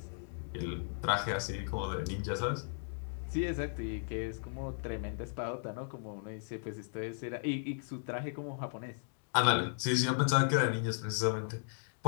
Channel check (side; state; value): right; silent; digital silence